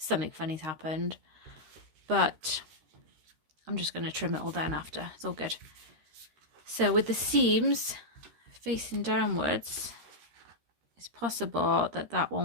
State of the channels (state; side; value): late; left; 13 ms